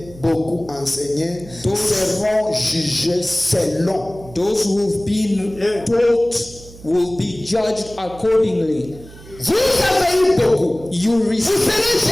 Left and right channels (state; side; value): noise; right; hum, 19 dB below the sound